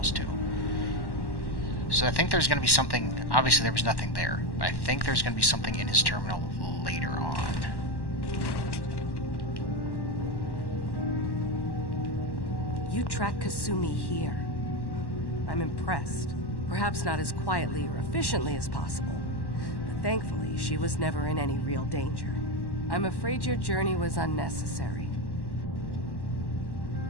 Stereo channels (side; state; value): right; late; 1.1 ms